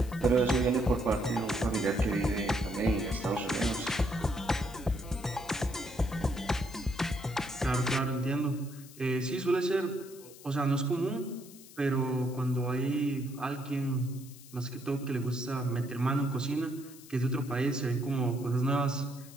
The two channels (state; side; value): noise; left; hiss, 19 dB below the sound